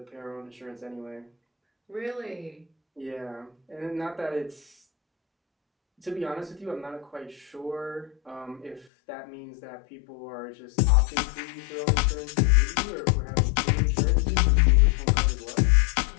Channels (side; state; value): right; drops out; at 8.8 s